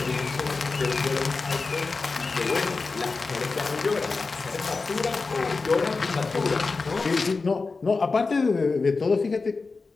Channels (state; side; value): quieter; right; 4.1 dB